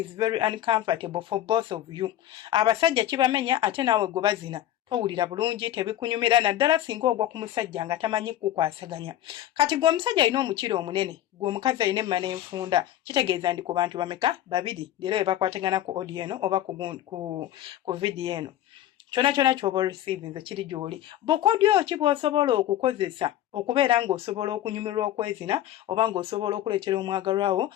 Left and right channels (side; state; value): right; quieter; 12.5 dB